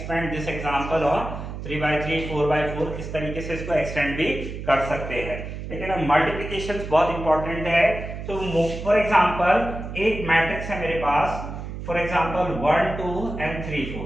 this example on 3/3, 4/4, इस तरीके से इसको एक्सटेंड भी कर सकते हैं। लेकिन अब मल्टीप्लिकेशन बहुत इंपॉर्टेंट है। तो फॉर एग्जांपल एक मैट्रिक्स है मेरे पास, फॉर एग्जांपल 1 2 एंड 3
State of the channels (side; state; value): right; noise; hum, 8 dB below the sound